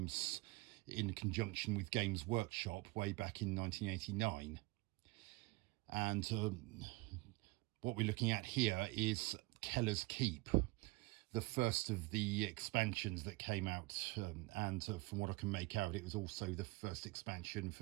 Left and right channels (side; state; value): left; quieter; 23.6 dB